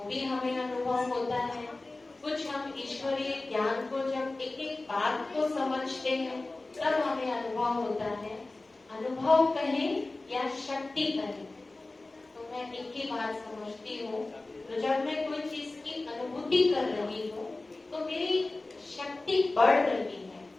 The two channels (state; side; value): quieter; right; 3.1 dB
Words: भी हमें अनुभव होता है। कुछ हम ईश्वरीय ज्ञान को जब एक एक बात को समझते हैं, तब हमें अनुभव होता है। अनुभव कहें या शक्ति कहें, तो मैं एक ही बात समझती हूँ। तो जब मैं कोई चीज की अनुभूति कर रही हूँ, तो मेरी शक्ति बढ़ रही है।